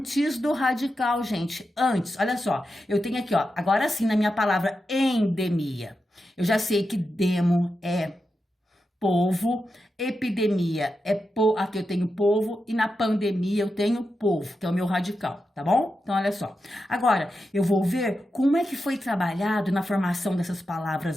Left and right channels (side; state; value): both; normal; correlation 0.89